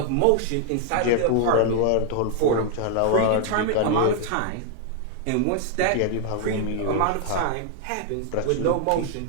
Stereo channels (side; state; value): both; different; correlation 0.00